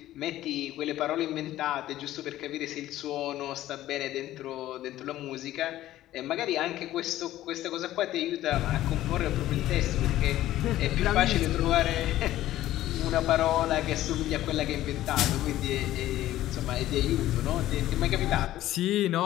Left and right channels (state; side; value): quieter; right; 14.3 dB